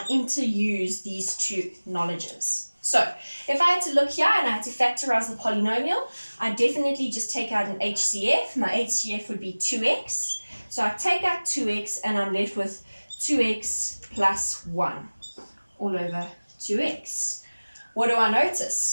interuse these two knowledges. So if I had to look here and I had to factorize the polynomial, I definitely just take out an HCF. My HCF would be 2x. So I take out 2x and I'm left with 2x plus 1 all over 2x. What do I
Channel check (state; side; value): inverted; both; correlation -1.00